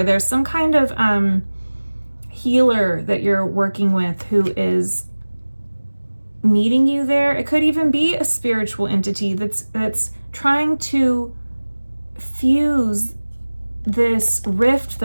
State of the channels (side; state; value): both; inverted; correlation -1.00